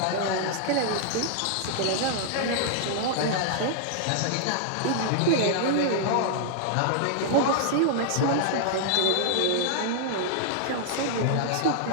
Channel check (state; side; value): different; both; correlation -0.01